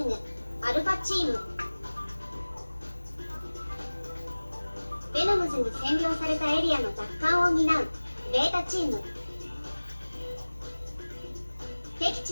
ぐアルファチーム。ベノムズに占領されたエリアの奪還を担うベータチーム。敵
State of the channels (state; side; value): inverted; both; correlation -1.00